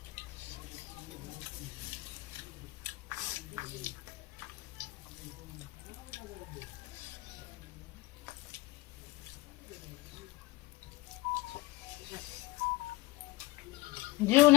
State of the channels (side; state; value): right; quieter; 20.6 dB